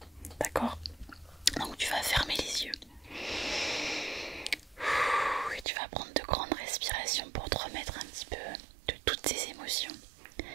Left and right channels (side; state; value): left; drops out; at 5.7 s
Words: D'accord? Donc tu vas fermer les yeux. Et tu vas prendre de grandes respirations pour te remettre un petit peu de toutes tes émotions